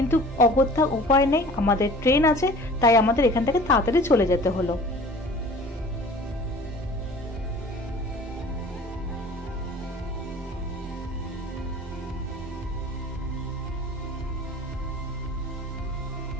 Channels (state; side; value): normal; both; correlation 0.45